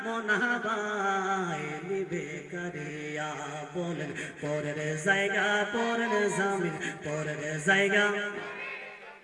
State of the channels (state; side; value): identical; both; correlation 1.00